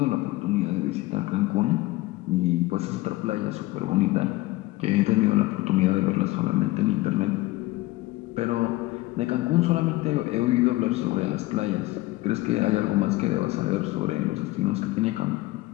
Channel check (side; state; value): right; quieter; 19.1 dB